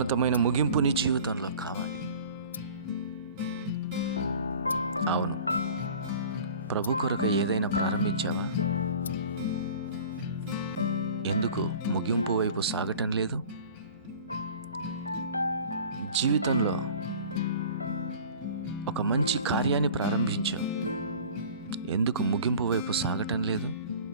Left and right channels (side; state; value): both; inverted; correlation -0.42